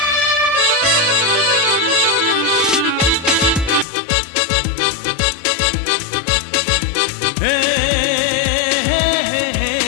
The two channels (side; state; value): right; drops out; at 3.9 s